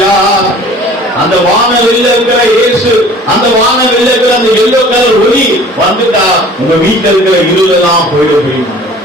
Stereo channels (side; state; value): both; normal; correlation 0.48